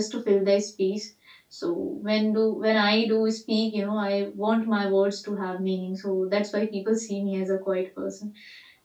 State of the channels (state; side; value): identical; both; correlation 1.00